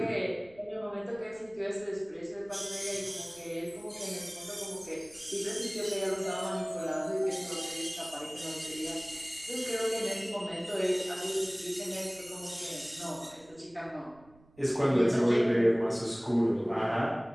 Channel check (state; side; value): noise; right; rumble, 27 dB below the sound